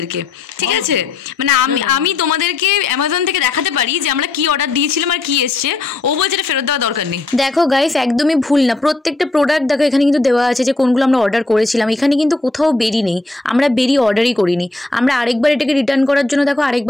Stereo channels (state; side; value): quieter; right; 3.2 dB